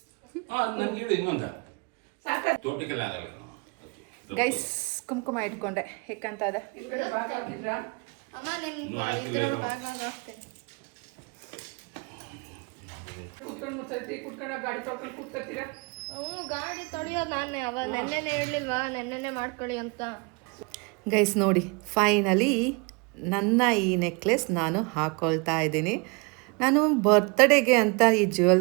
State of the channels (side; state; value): left; quieter; 30.9 dB